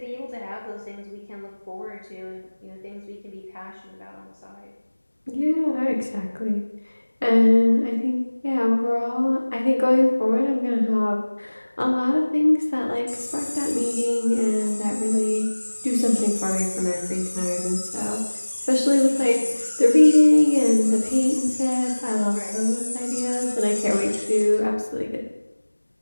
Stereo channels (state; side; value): inverted; both; correlation -1.00